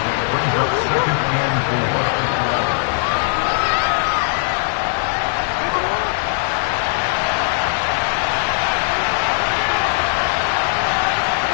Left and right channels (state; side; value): silent; right; 59 dB below the other